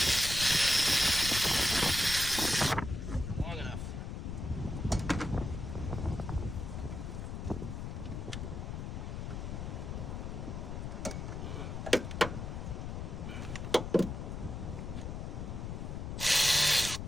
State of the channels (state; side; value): noise; left; rumble, 5 dB below the sound